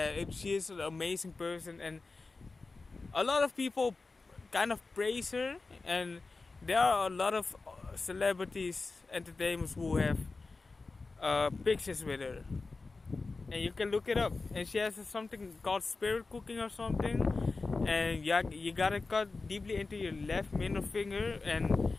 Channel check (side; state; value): right; quieter; 3.8 dB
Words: she is an amazing person, and a lot of people kind of praise her, and there are a lot of celebrities, entertainers who have pictures with her, and you can look it up. And she has something called spirit cooking or something, and you gotta cut deeply into your left middle finger, and